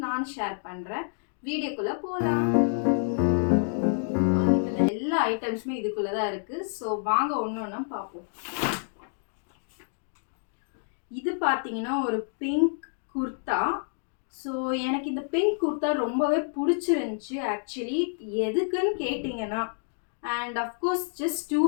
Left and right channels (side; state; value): right; silent; digital silence